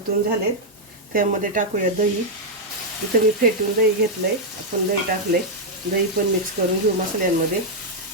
झालेत, त्यामध्ये टाकूया दही. इथं मी फेटून दही घेतलंय, आपण दही टाकलंय. दही पण मिक्स करून घेऊ मसाल्यांमध्ये.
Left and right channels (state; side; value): normal; both; correlation -0.03